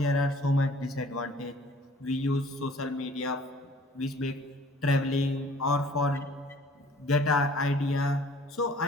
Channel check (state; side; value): normal; both; correlation 0.54